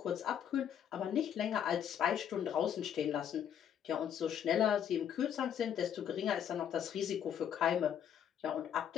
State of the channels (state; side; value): quieter; right; 9.0 dB